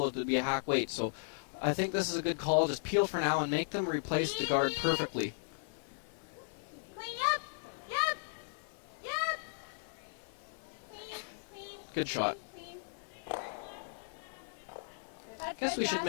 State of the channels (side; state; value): right; silent; 54 dB below the other